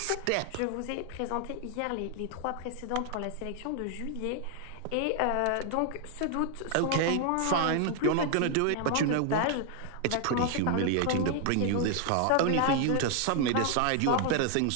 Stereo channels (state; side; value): different; both; correlation 0.00